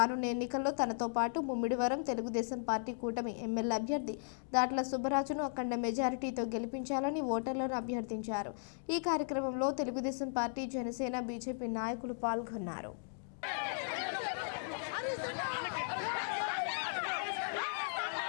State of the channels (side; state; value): right; silent; digital silence